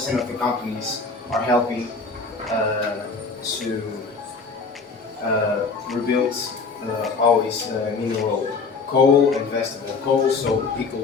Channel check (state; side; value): quieter; right; 4.5 dB